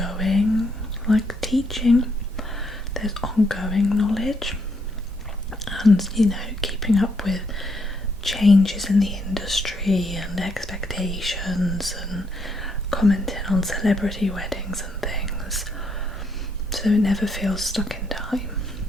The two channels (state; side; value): normal; both; correlation 0.74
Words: like, teaching, there's ongoing knowledge, and, you know, keeping up with changes in the industry and expectations, and commenting on celebrity weddings and things, so it never feels stuck in time.